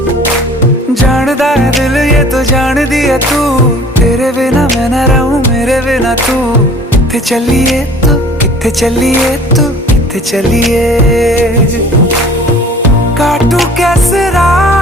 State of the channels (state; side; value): normal; both; correlation 0.49